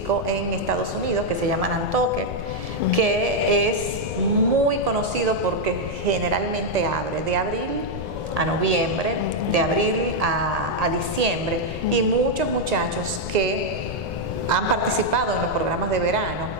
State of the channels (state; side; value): noise; left; rumble, 9 dB below the sound